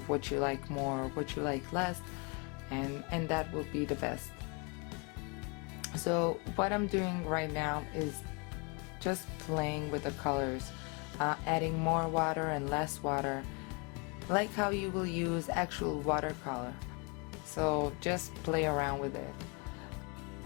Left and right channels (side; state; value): right; quieter; 32.1 dB